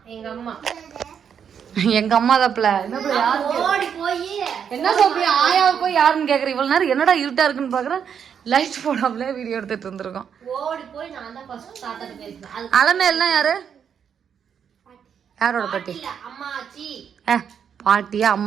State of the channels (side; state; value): left; quieter; 7.7 dB